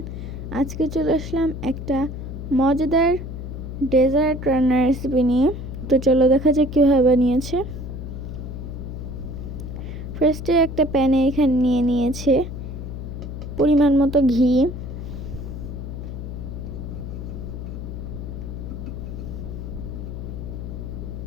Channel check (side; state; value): left; noise; hum, 7 dB below the sound